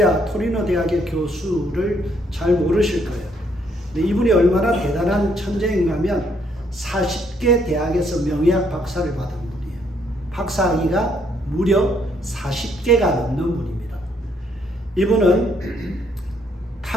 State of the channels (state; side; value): normal; both; correlation 0.70